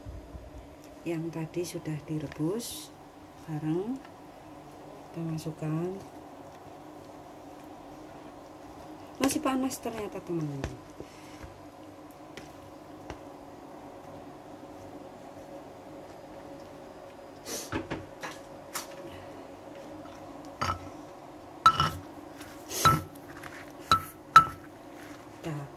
yang tadi sudah direbus bareng, kita masukkan. Masih panas ternyata teman-teman. Kita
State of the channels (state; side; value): identical; both; correlation 1.00